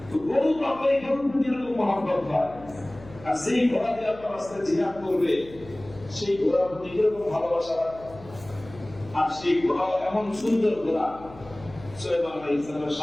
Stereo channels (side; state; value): left; noise; hum, 19 dB below the sound